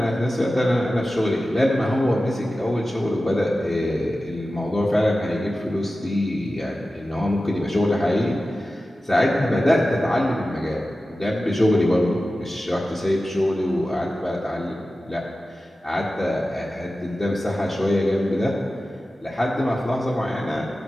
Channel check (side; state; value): both; normal; correlation 0.94